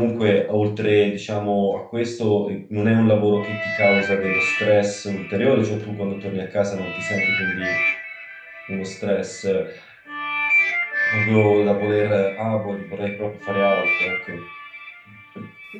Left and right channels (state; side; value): identical; both; correlation 1.00